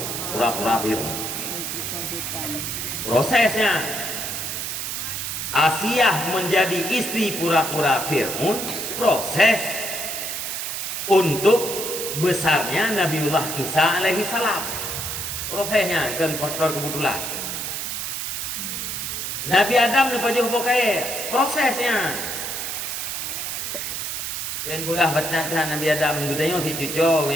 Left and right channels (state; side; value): noise; right; hiss, 3 dB below the sound